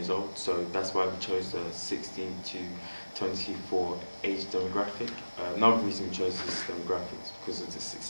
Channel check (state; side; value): inverted; both; correlation -1.00